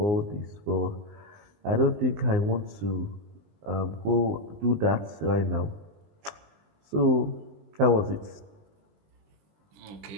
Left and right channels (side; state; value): left; late; 19 ms